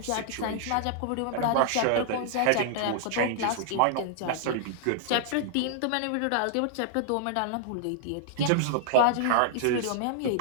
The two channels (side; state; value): both; different; correlation -0.01